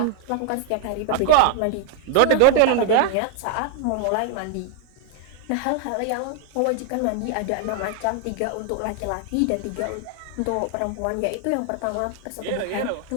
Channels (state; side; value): different; both; correlation 0.00